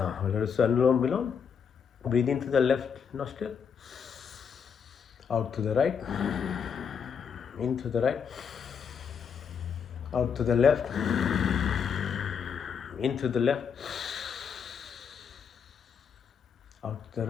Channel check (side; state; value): right; quieter; 6.9 dB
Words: let us Anulom Vilom. Breathe into the left nostril, out to the right, into the right, out to the left, into the left, out to the